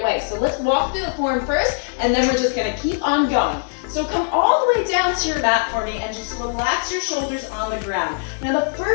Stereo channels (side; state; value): right; silent; 65 dB below the other